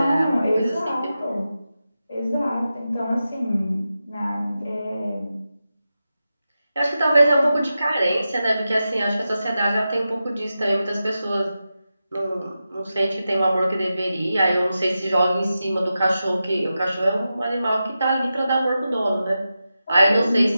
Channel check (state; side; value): inverted; both; correlation -0.91